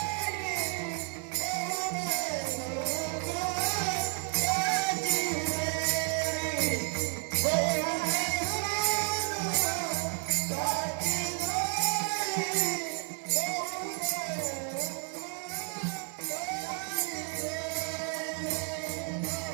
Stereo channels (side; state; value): left; quieter; 40.0 dB